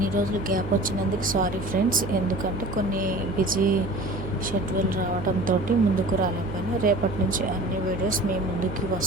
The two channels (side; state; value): right; noise; hum, 9 dB below the sound